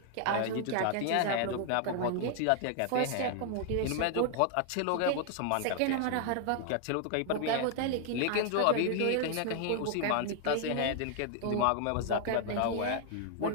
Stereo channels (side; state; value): both; different; correlation 0.00